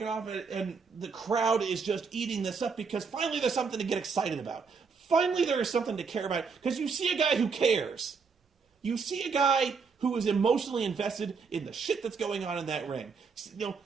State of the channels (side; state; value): left; quieter; 5.3 dB